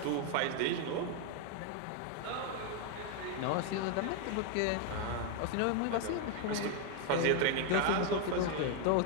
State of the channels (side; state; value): both; different; correlation 0.01